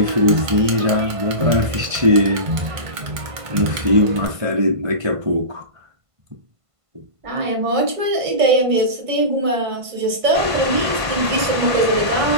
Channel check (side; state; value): left; late; 1.5 ms